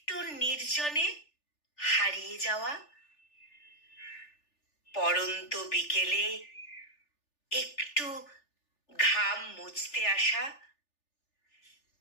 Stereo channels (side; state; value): right; late; 3.4 ms